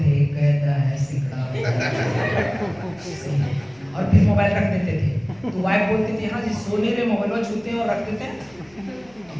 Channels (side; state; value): left; noise; hum, 30 dB below the sound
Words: कैदा है सिकड़ा और फिर मोबाइल रख देते थे। तो वाइफ बोलती थी हाँ जी सोने रे मोबाइल छूते हैं और रख देते हैं।